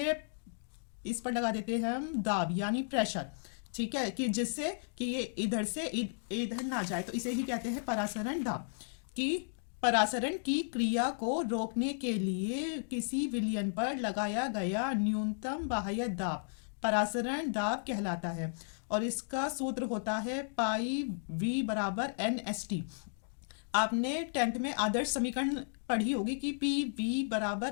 इस पर लगा देते हैं हम दाब यानी प्रेशर। ठीक है, कि जिससे कि ये इधर से इधर ना जाए, तो इसे ही कहते हैं परासरण दाब। कि परासरण की क्रिया को रोकने के लिए किसी विलयन पर लगाया गया न्यूनतम बाह्य दाब परासरण दाब कहलाता है। और इसका सूत्र होता है पाई वी बराबर NST। आपने 10th में आदर्श समीकरण पढ़ी होगी कि पी वी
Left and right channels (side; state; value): right; silent; digital silence